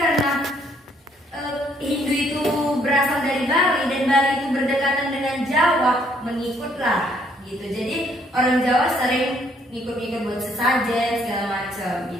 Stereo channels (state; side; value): normal; both; correlation 0.67